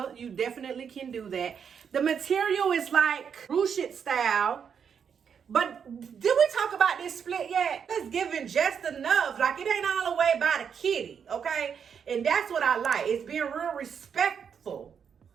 you definitely can do that. The material is like ruched style. But did we talk about this split yet? It's giving just enough. Like it ain't all the way by the kitty, okay? And that's what I like. It's being real respectful.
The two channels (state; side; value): quieter; left; 7.2 dB